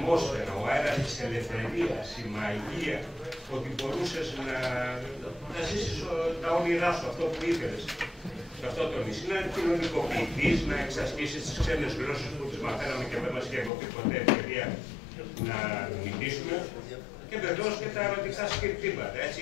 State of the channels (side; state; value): right; drops out; at 13.7 s